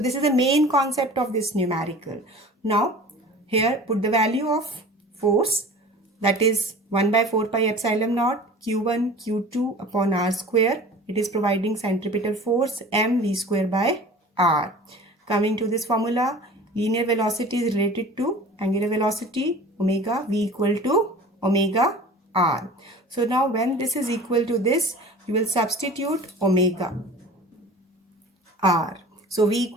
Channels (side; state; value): both; normal; correlation 0.41